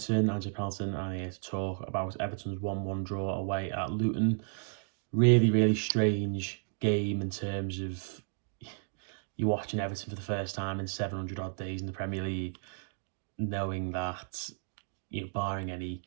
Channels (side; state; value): left; silent; digital silence